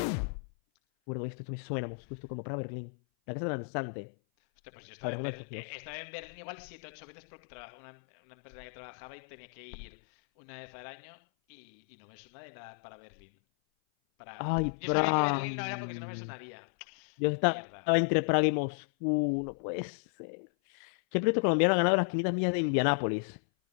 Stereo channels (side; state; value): right; silent; 55 dB below the other